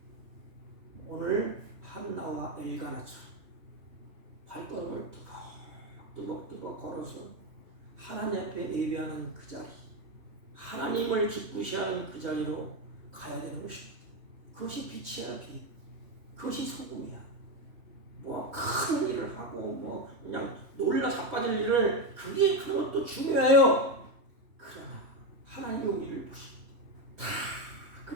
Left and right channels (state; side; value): late; left; 3.2 ms